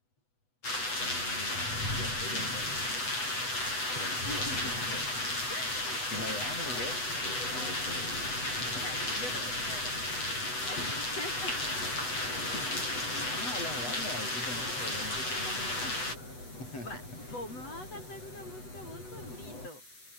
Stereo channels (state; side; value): late; right; 8.0 ms